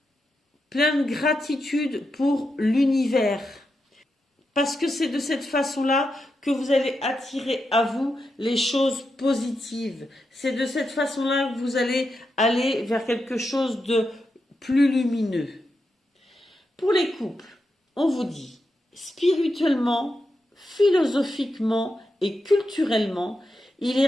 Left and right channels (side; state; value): both; normal; correlation 0.86